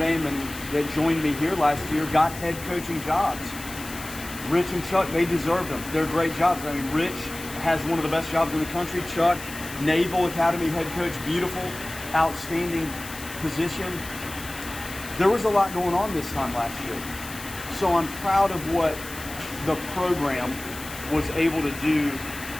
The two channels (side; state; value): left; noise; hiss, 13 dB below the sound